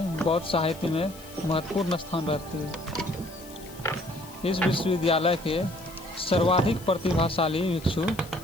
बौद्ध साहित्य में महत्वपूर्ण स्थान रखती है। इस विश्वविद्यालय के सर्वाधिक प्रतिभाशाली भिक्षु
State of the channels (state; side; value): noise; left; hiss, 19 dB below the sound